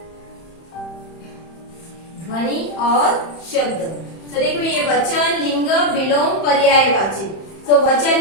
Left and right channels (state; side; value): late; right; 31 ms